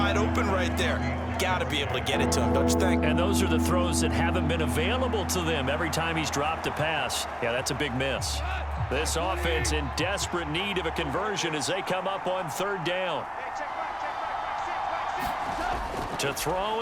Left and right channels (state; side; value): identical; both; correlation 1.00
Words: open right there. Got to be able to get it to him, don't you think? And those are the throws that haven't been available to them every time he's dropped a pass. Yeah, that's a big miss. This offense in desperate need of a conversion as they come up on 3rd down. To